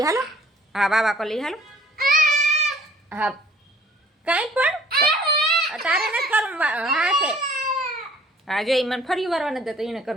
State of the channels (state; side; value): normal; both; correlation 0.54